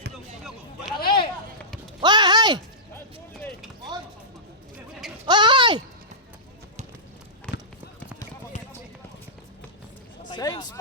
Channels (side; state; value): both; normal; correlation -0.18